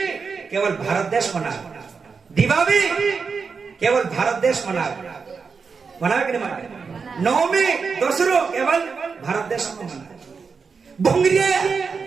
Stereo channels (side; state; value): left; quieter; 5.3 dB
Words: केवल भारत देश मना दिवाली केवल भारत देश मनावे मनावे कि नहीं मनावे। नवमी दसरो केवल भारत देश में मनावे। भोंगरिया